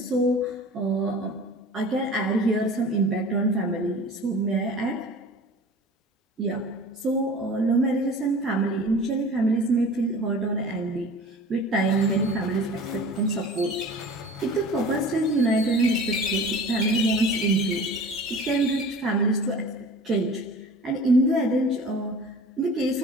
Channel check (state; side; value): normal; both; correlation 0.41